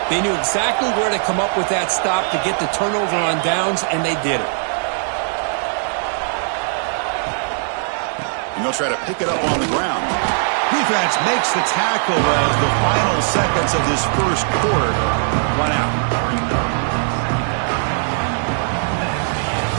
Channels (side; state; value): left; silent; digital silence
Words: They knew exactly where to come up with that stop to get the turnover on downs, and they did it. And they'll try to pick it up on the ground. Defense makes the tackle as the final seconds of this first quarter run out.